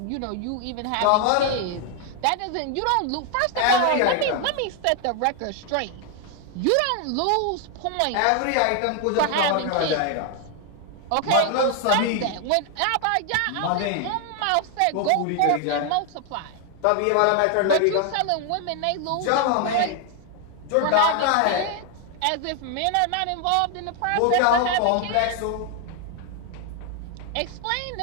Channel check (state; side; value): different; both; correlation 0.00